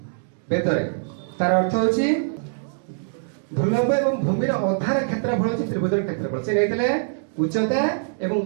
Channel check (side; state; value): left; silent; digital silence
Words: वेद रे तार अर्थ होची ध्रुव एवं भूमि अधार क्षेत्रफल होची त्रिभुजर क्षेत्रफल से लेतले उच्चता एवं